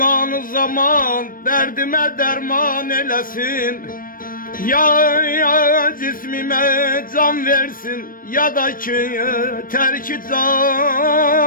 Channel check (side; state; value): right; late; 0.41 ms